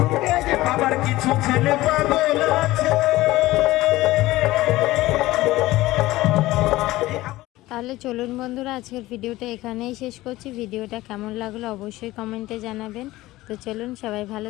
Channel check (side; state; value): right; quieter; 17.6 dB